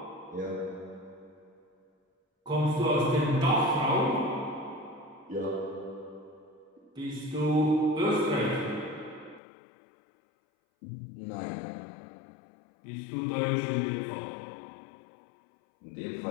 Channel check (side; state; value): right; drops out; at 9.4 s